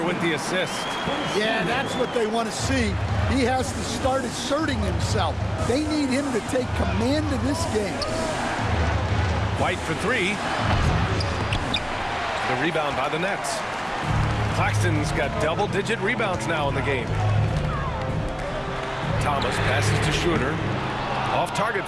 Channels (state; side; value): identical; both; correlation 1.00